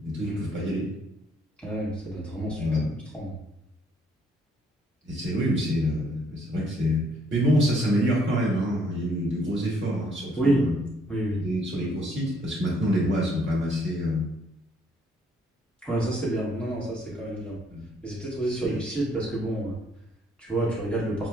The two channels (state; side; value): normal; both; correlation 0.67